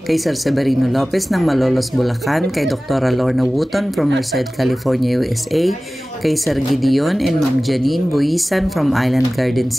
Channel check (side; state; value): both; normal; correlation 0.97